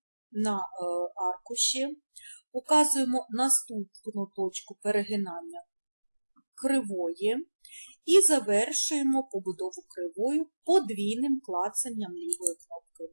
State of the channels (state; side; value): inverted; both; correlation -1.00